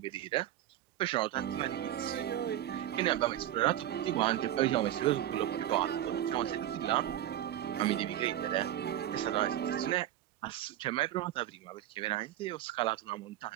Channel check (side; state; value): left; quieter; 12.5 dB